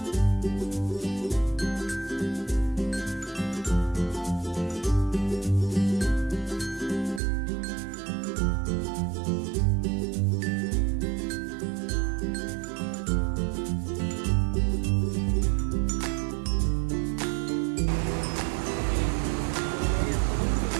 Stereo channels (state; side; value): drops out; left; at 7.2 s